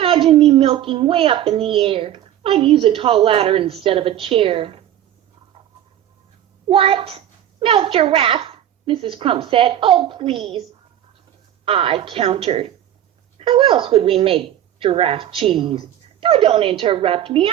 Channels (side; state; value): left; quieter; 11.4 dB